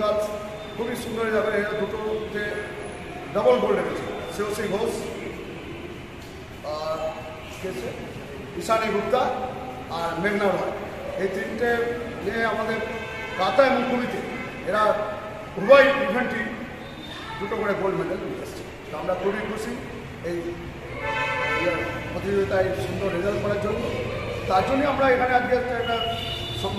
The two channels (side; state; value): both; identical; correlation 1.00